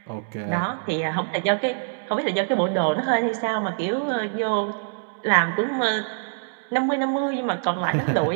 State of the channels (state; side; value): silent; left; digital silence